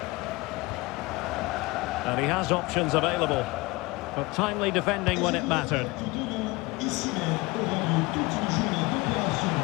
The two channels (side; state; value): right; quieter; 23.0 dB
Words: And he has options available, but timely defending when it mattered.